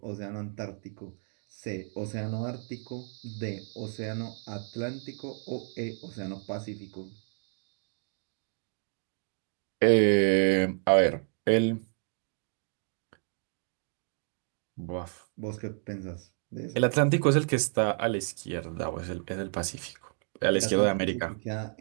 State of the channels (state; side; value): silent; left; 57 dB below the other